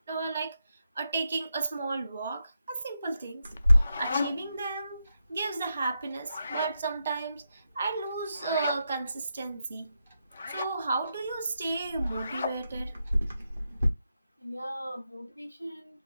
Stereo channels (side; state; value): both; inverted; correlation -0.86